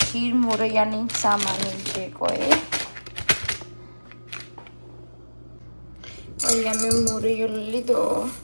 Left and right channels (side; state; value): both; inverted; correlation -1.00